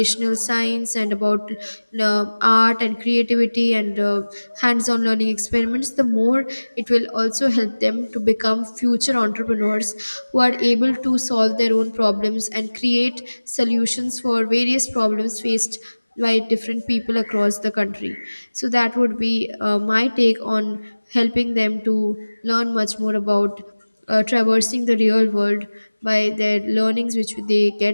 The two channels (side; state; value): both; inverted; correlation -1.00